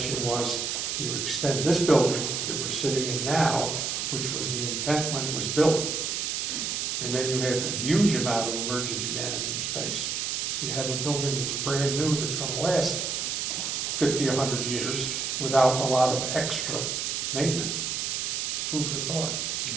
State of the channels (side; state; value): right; noise; hiss, 1 dB below the sound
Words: was you extend this building that we're sitting in now, which was the intent when it was built. And then you have a huge amount of emergency management space. You have a building that's brand new, that's gonna last 50, 100 years without a lot of extra maintenance. Food for thought.